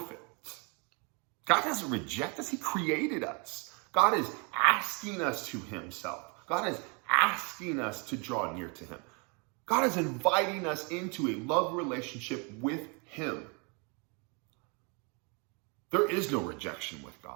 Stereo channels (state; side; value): quieter; left; 33.2 dB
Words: God doesn't reject us. He created us. God is asking us to himself. God is asking us to draw near to him. God is inviting us into a love relationship with him. There is no rejection with